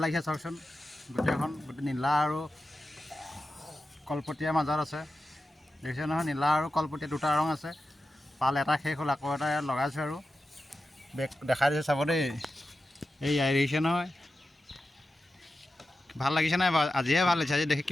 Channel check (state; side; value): normal; both; correlation 0.92